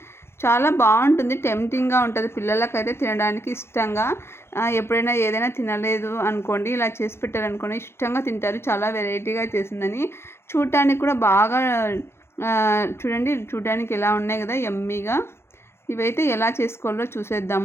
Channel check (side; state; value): right; late; 0.12 ms